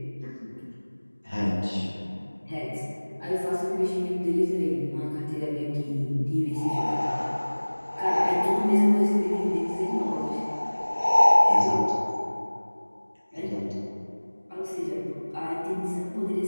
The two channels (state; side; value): inverted; both; correlation -1.00